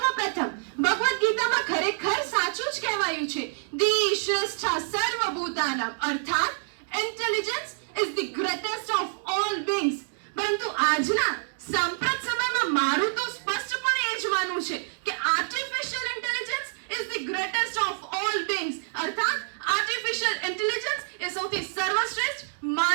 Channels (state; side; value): silent; left; digital silence